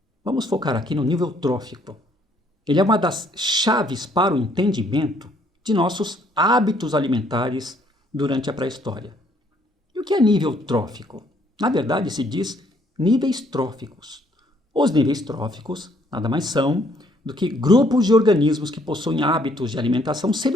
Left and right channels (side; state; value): both; normal; correlation 0.66